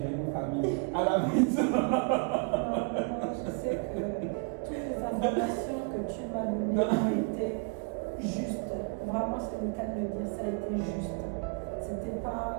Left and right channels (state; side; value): quieter; left; 36.7 dB